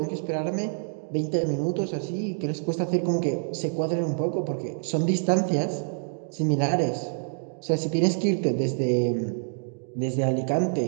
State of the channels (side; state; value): left; silent; digital silence